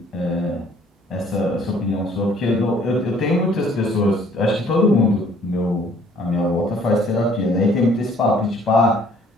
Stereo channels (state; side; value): normal; both; correlation 0.59